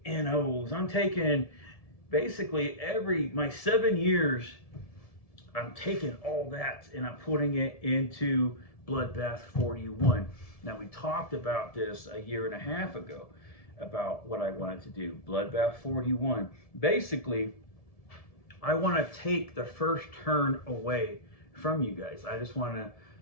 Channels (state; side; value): late; right; 1.7 ms